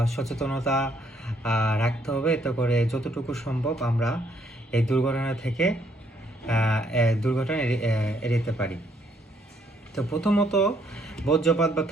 সচেতনতা রাখতে হবে, এতে করে যতটুকু সম্ভব আমরা এই দুর্ঘটনা এড়াতে পারি। তো প্রথমত বজ্রপাত বা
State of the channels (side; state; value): both; normal; correlation 0.69